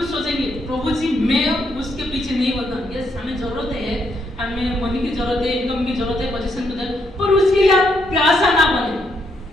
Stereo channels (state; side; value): normal; both; correlation 0.76